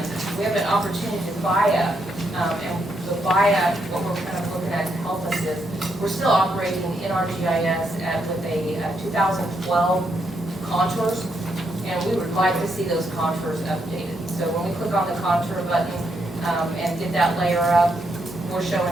We have an opportunity to buy up, and the buy-up, what we're kind of looking at to help us is, we're still operating in our GIS with a 2012 contours, and we would like to see those contours updated. So when we click on the contour button and get that layer up, we're showing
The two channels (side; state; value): both; normal; correlation 0.78